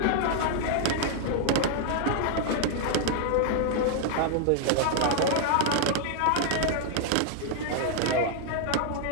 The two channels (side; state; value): both; different; correlation 0.00